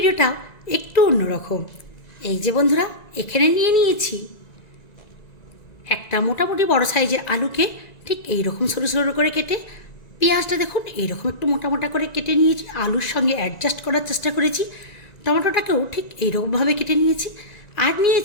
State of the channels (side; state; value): right; late; 1.9 ms